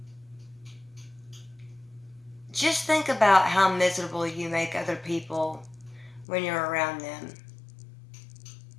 just think about how miserable you make other people when you're around them.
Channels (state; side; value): drops out; right; at 6.2 s